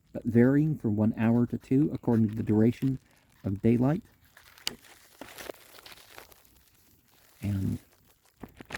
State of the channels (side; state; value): both; identical; correlation 1.00